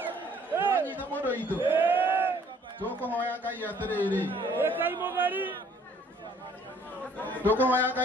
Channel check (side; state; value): both; normal; correlation 0.59